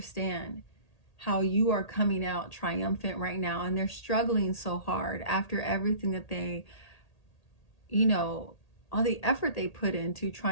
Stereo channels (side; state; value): right; late; 1.8 ms